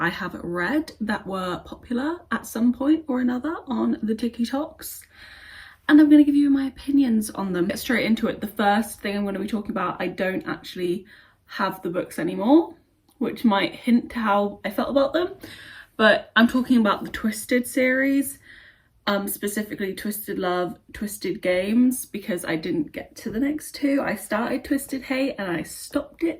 I have read that were popular at some point or another on the TikToks, and I'm going to give you my opinions on them. Get straight into it. The first thing I'm going to be talking about, I don't actually have the books anymore, which might hint to how I felt about them, but I'm talking about the Twisted series, specifically Twisted Love, Twisted Games, because I didn't get to the next two. I started Twisted Hate and I stopped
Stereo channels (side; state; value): both; identical; correlation 1.00